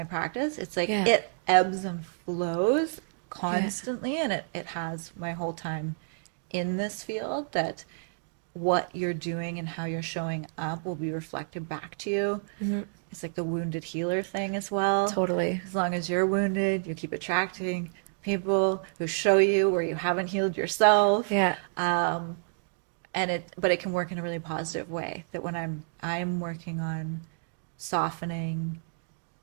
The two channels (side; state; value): left; silent; digital silence